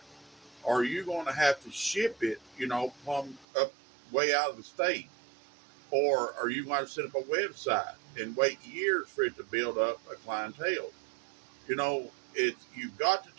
Are you going to have to ship it, plumb up way out of the state? Or are you going to set up a website and wait years for it to build up a clientele? You've got to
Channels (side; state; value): left; drops out; at 3.5 s